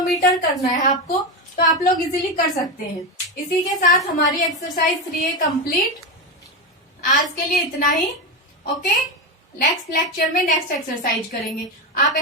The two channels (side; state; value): both; normal; correlation 0.14